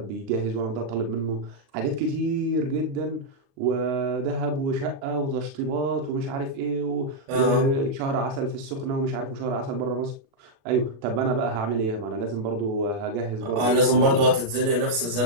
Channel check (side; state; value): left; late; 36 ms